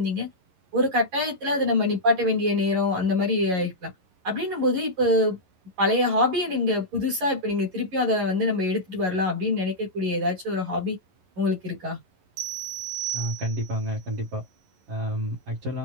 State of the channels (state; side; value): late; left; 11 ms